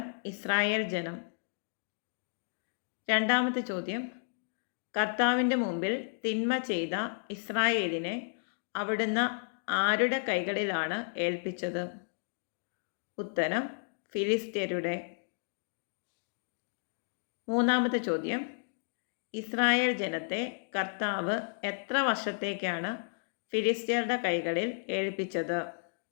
ഇസ്രായേൽ ജനം. രണ്ടാമത്തെ ചോദ്യം, കർത്താവിൻ്റെ മുമ്പിൽ തിന്മ ചെയ്ത ഇസ്രായേലിനെ അവിടുന്ന് ആരുടെ കൈകളിലാണ് ഏൽപ്പിച്ചത്? ഉത്തരം, ഫിലിസ്ത്യരുടെ. മൂന്നാമത്തെ ചോദ്യം, ഇസ്രായേൽ ജനത്തെ കർത്താവ് എത്ര വർഷത്തേക്കാണ് ഫിലിസ്ത്യരുടെ കൈകളിൽ ഏൽപ്പിച്ചത്?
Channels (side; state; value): right; silent; digital silence